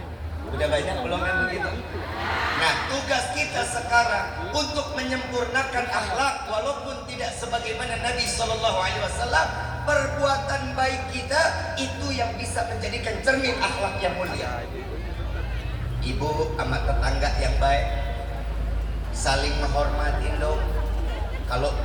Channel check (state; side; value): identical; both; correlation 1.00